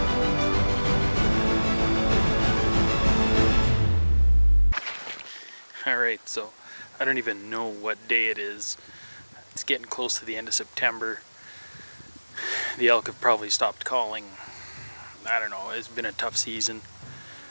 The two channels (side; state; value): both; inverted; correlation -1.00